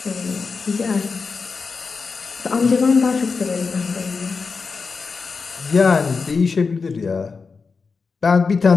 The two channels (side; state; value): right; quieter; 4.8 dB